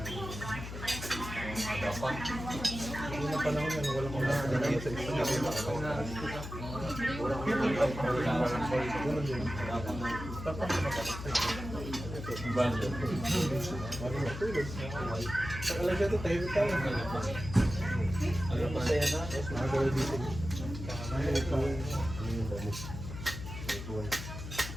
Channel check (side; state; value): left; noise; hum, 9 dB below the sound